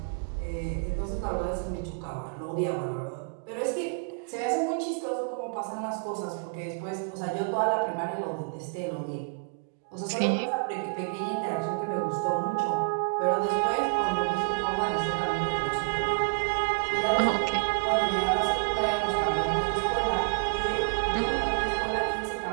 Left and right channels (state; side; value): quieter; left; 34.9 dB